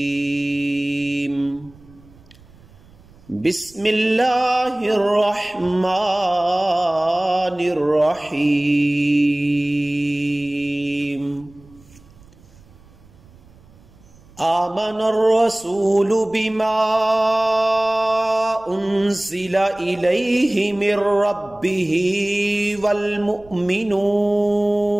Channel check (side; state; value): right; noise; rumble, 26 dB below the sound